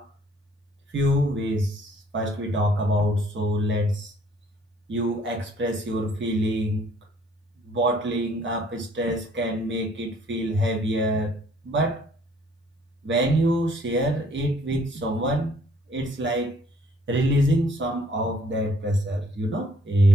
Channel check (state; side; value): normal; both; correlation 0.60